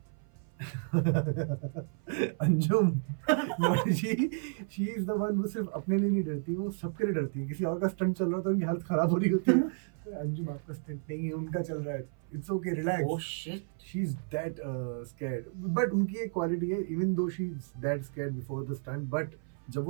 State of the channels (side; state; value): left; silent; 55 dB below the other